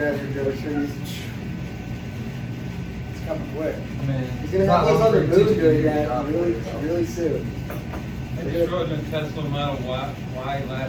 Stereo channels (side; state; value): both; identical; correlation 1.00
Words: your groceries. It's coming quick. I mean, He's gonna it's have not those long other for moves teaching doing you to that drop really, it, so. really soon. I just rode a Tesla Model Y